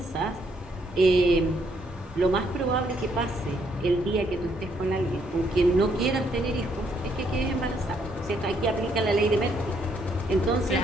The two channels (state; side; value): normal; both; correlation 0.71